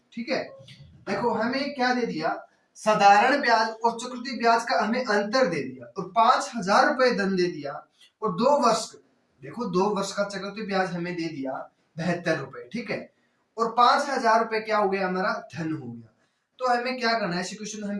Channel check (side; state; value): both; identical; correlation 1.00